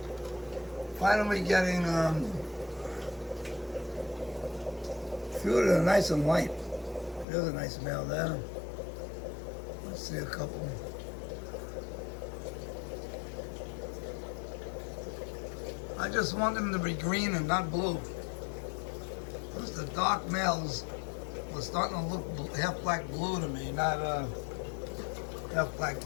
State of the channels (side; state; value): right; drops out; at 7.2 s